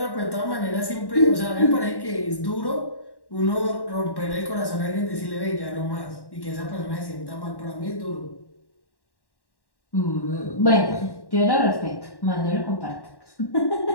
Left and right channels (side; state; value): right; late; 1.1 ms